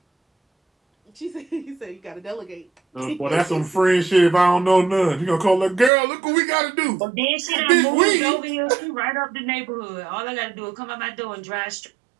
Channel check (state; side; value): drops out; left; at 5.9 s